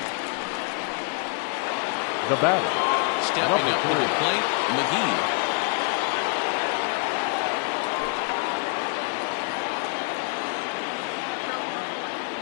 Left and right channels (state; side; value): quieter; right; 37.3 dB